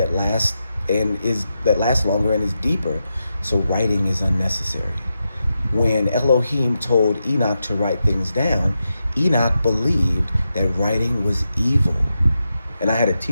lasts longer and is deeper. So writing is unnecessary. when Elohim told Enoch to write things down, Enoch believed that writing was evil. And I had a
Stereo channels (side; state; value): both; inverted; correlation -0.87